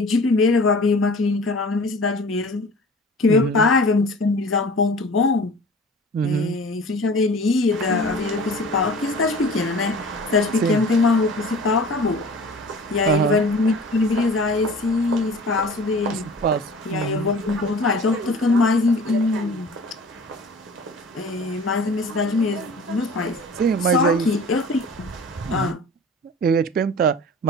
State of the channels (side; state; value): both; normal; correlation 0.42